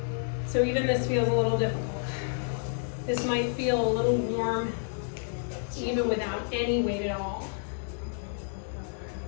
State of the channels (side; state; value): right; silent; digital silence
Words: So even this feels a little difficult. This might feel a little warm even without any weight at all.